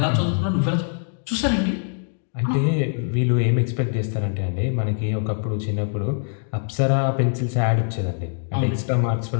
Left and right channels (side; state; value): right; silent; 63 dB below the other